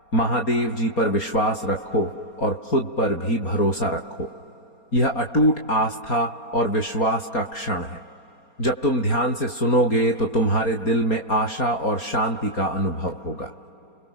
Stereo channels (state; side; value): late; right; 4.3 ms